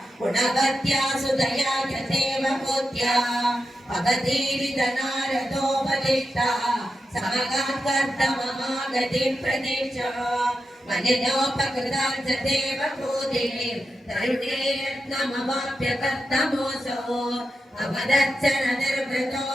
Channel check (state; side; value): normal; both; correlation 0.89